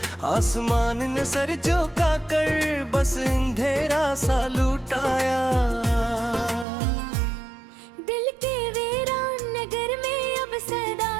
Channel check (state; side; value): drops out; left; at 6.7 s